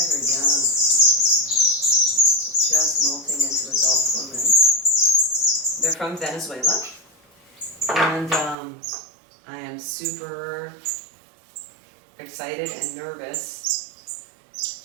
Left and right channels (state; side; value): drops out; left; at 8.6 s